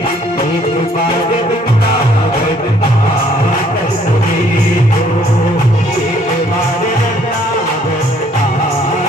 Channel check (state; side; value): normal; both; correlation 0.63